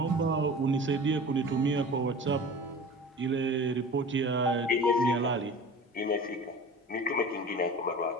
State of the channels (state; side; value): normal; both; correlation 0.38